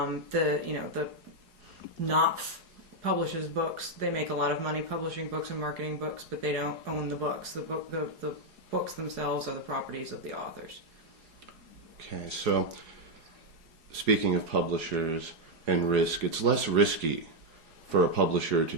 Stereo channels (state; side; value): late; left; 4.8 ms